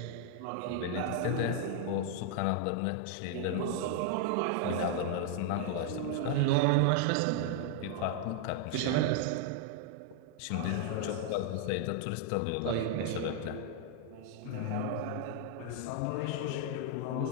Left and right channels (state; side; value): different; both; correlation 0.00